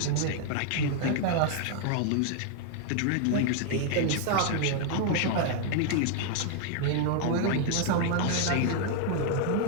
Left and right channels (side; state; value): both; different; correlation 0.00